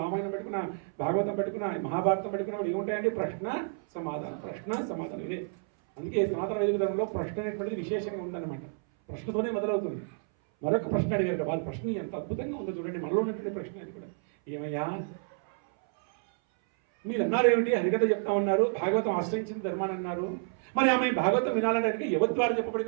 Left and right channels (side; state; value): left; silent; 58 dB below the other